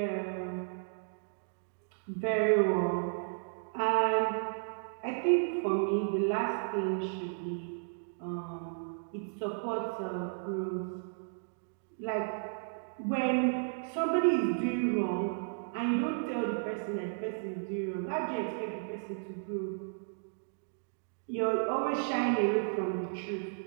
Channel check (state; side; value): silent; left; digital silence